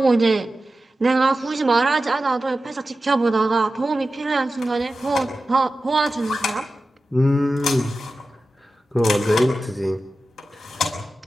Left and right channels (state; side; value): normal; both; correlation 0.94